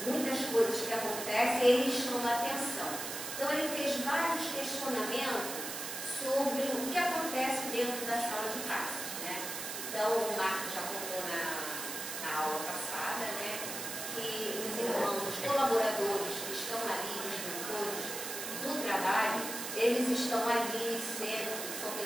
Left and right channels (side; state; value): right; noise; hiss, 5 dB below the sound